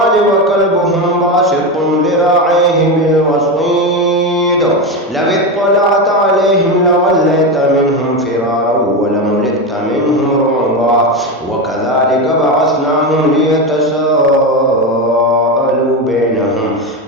وكلبهم باسط ذراعيه بالوصيد لو اطلعت عليهم لوليت منهم فرارا ولملئت منهم رعبا وكذلك بعثناهم ليتساءلوا بينهم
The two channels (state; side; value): normal; both; correlation 0.16